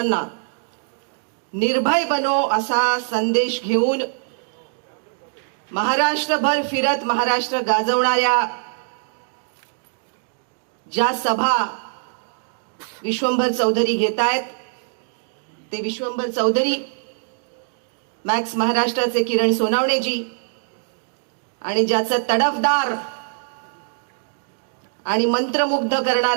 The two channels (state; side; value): silent; left; digital silence